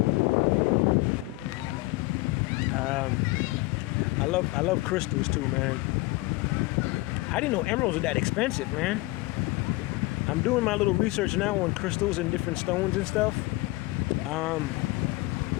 I love crystals too, man. I didn't know emeralds were that expensive, man. I'm doing my little research now on crystals and different stones and stuff.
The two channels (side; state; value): right; quieter; 21.4 dB